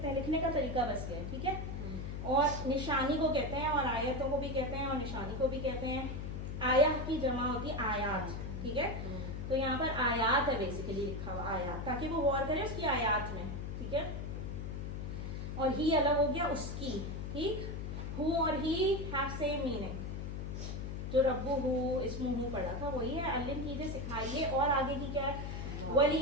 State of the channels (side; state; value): left; noise; hum, 5 dB below the sound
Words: ہیں, لکھنے کا طریقہ بس یہ ہے, ٹھیک ہے. اور نشانی کو کہتے ہیں, اور آیتوں کو بھی کہتے ہیں, اور نشانی کو بھی کہتے ہیں. آیا کی جمع ہوتی ہے آیات, ٹھیک ہے. تو یہاں پر آیات ہے بیسیکلی لکھا ہوا, آیات, تاکہ وہ غور کرے اس کی آیات میں, ٹھیک ہے. اور ہی الگ ہو گیا اس کی, ٹھیک. ہو اور ہی ہیو سیم میننگ. جو ربو ہو اسم ہو پڑھا تھا وہی ہے. علم کیجیے, سکھائیے. اور آگے کی کیا ہے,